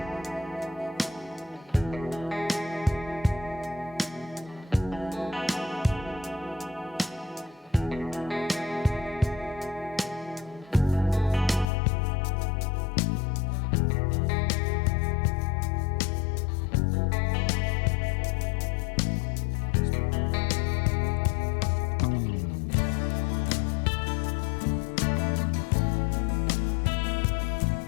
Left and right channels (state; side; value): drops out; right; at 11.7 s